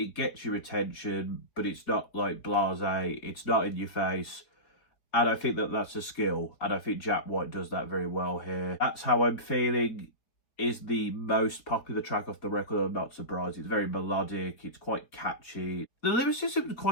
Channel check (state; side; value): late; right; 4.3 ms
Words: gets your attention, but it's not blasé, it's not in your face. And I think that's a skill, and I think Jack White does that very well here. That's How I'm Feeling is the most popular track off the record. I'm not surprised. It's very melodic, it's quite catchy. The lyricism is